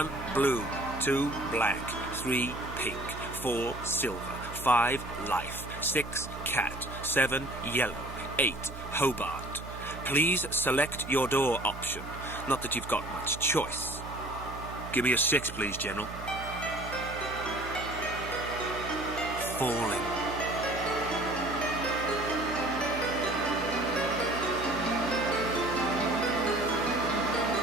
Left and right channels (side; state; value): right; noise; hum, 11 dB below the sound